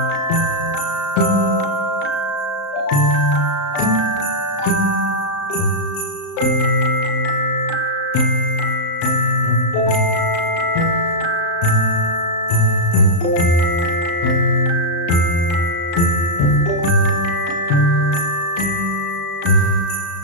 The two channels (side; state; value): right; late; 35 ms